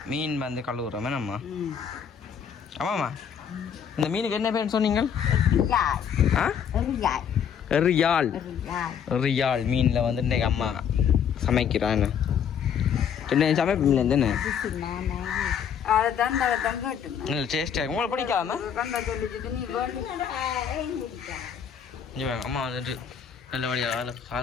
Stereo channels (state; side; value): quieter; right; 7.9 dB